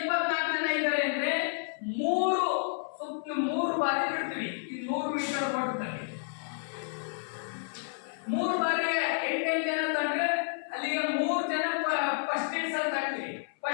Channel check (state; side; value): silent; right; 57 dB below the other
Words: ಜನ ಇದ್ದಾರೆ ಅಂದ್ರೆ 3 ಬಾರಿ ಬಿಡ್ತೀವಿ. ಈ 100 ಮೀಟರ್ ಓಟದಲ್ಲಿ 3 ಬಾರಿ 8 ಜನ ತಂದ್ರೆ ಅಲ್ಲಿಗೆ 3 ಜನ ಫಸ್ಟ್ ಇಡ್ಸ್ ಅಲ್ಲಿ ತರ್ತೀವಿ.